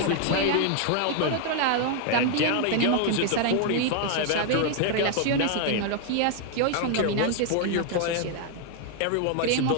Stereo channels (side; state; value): both; different; correlation 0.00